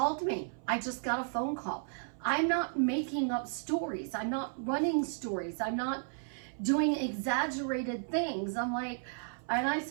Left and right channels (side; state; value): left; silent; 55 dB below the other